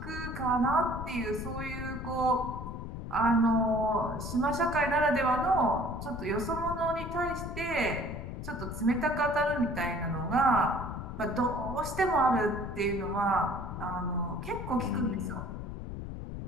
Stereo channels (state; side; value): noise; left; rumble, 7 dB below the sound